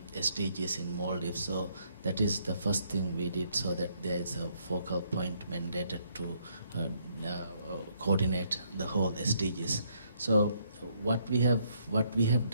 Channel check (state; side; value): inverted; both; correlation -0.71